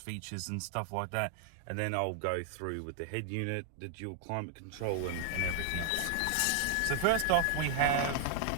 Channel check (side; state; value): both; different; correlation 0.00